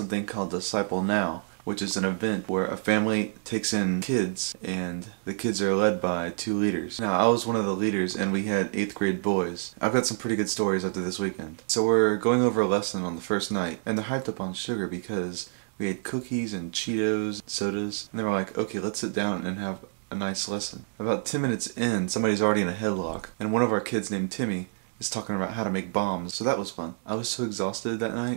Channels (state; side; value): silent; left; digital silence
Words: called Disciple Now, which is an event where a family takes in kids and the kids are led by 2 leaders. Now I was one of the leaders and we had 8th grade boys. I've got some pretty good stories after this weekend. So we're going over a lesson on the first night and they're hyped up on sugar because we had cookies and Cheetos, sodas, and they were like, okay, let's sit down and have a nice lesson. About 10 minutes in, somebody's already in a headlock and one of our kids named Timmy is talking about how to make bombs, so that was fun. I was so exhausted that